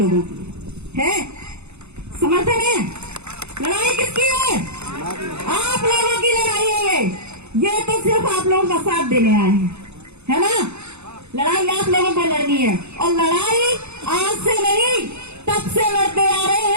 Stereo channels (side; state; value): left; late; 0.81 ms